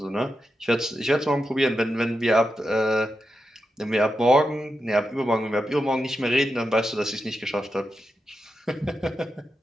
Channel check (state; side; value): normal; both; correlation 0.88